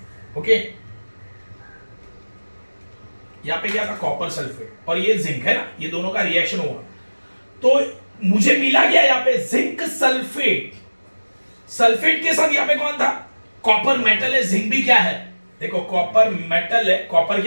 ओके, यहां पे क्या था? कॉपर सल्फेट, और ये जिंक है ना, ये दोनों का रिएक्शन हुआ तो मुझे मिला क्या यहां पे? Zinc sulphate. सल्फेट के साथ यहां पे कौन था? कॉपर मेटल है, जिंक भी क्या है? देखो कॉपर मेटल है, कॉपर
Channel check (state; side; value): inverted; both; correlation -1.00